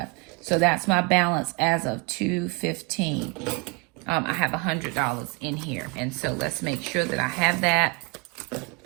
So that's my balance as of 2/15. I have $100 in here. And so let's make sure that I have that.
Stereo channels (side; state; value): left; quieter; 30.1 dB